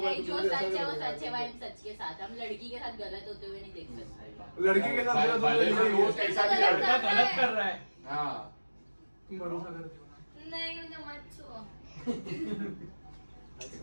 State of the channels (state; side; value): inverted; both; correlation -1.00